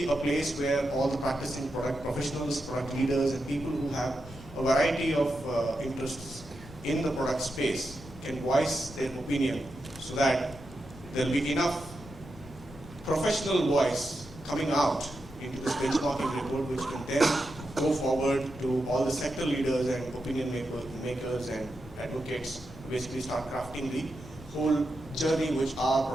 a place where all the practicing product professionals, product leaders, and people who have a variety of interests in the product space can voice their opinion, so that there will be enough professional voice coming out into this benchmarking report, which can then go forward to all the sector leaders and opinion makers and advocates to basically start crafting the whole journey which our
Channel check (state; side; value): noise; left; rumble, 18 dB below the sound